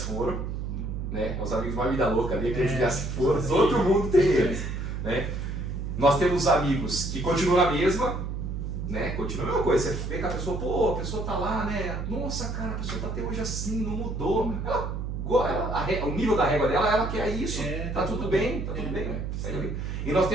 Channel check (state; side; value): noise; right; hum, 4 dB below the sound